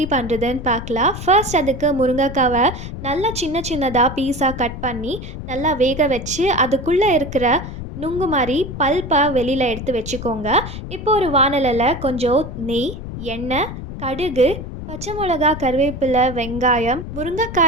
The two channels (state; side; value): noise; left; rumble, 9 dB below the sound